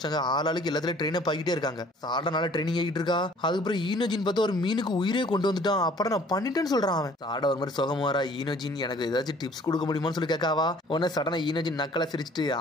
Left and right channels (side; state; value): both; normal; correlation 0.55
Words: ஆளாளுக்கு எல்லாத்துலயும் ட்ரெயின் ஆகிட்டே இருக்காங்க. சாடனால ட்ரைனிங் ஆகிட்டு இருக்கா. அதுக்கப்புறம் ஈனோஜின் பார்த்தா ஒரு மீனுக்கு உயிரே கொண்டு வந்துட்டான். அப்புறம் நான் பண்ணிட்டேன்னு சொல்றான் அவன். சாட ஒரு மாதிரி சுகமா வரா. ஈனோஜின் எனக்கு ஏதாச்சும் டிப்ஸ் கொடுக்க முடியுமான்னு சொல்லி கேட்காவா. உடனே சடனா ஈனோஜின் நக்கலை சிரிச்சுட்டு